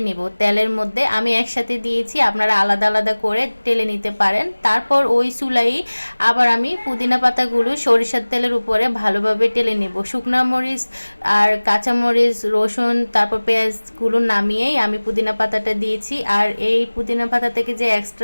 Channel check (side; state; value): both; inverted; correlation -1.00